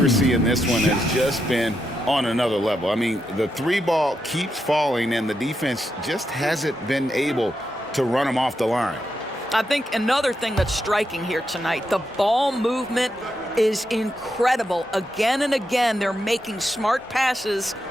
in this one has just been on another level. I mean, the three ball keeps falling, and the defense just hasn't been able to run them off the line. I think another thing that's striking here tonight, the ball movement is incredible. Again and again, they're making smart passes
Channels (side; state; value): both; normal; correlation 0.84